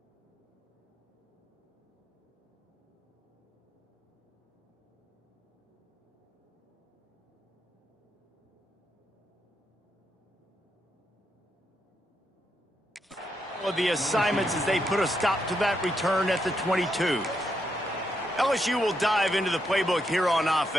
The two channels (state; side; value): normal; both; correlation 0.81